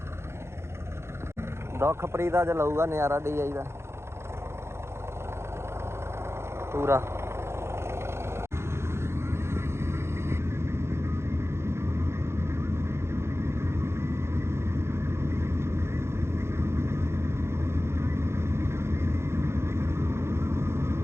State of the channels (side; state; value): left; late; 0.13 ms